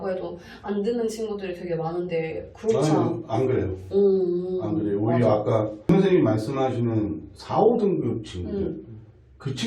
해도 안 듣는 친구들이 되게 많은데 그렇지 안 그래요. 안 그래요. 오히려 맞아. 아까 선생님이 말씀하시는 4, 5등급 친구들 그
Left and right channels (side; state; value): both; identical; correlation 1.00